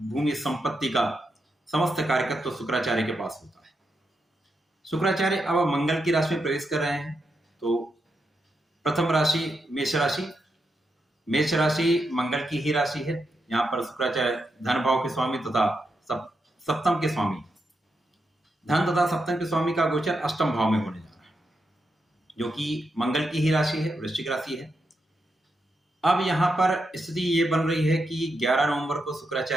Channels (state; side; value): normal; both; correlation 0.84